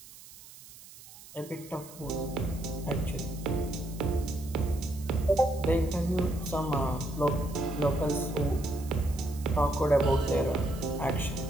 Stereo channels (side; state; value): right; noise; hiss, 19 dB below the sound